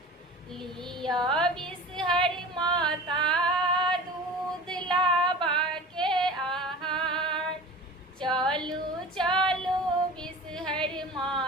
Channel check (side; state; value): both; normal; correlation 0.38